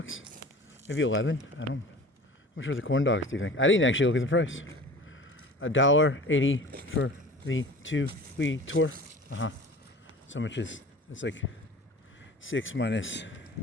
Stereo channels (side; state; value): both; normal; correlation 0.40